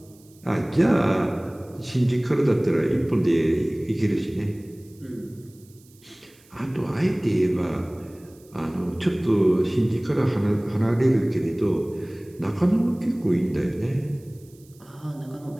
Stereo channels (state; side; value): noise; right; hiss, 28 dB below the sound